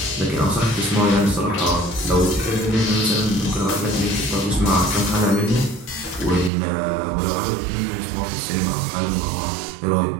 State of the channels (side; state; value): left; drops out; at 6.5 s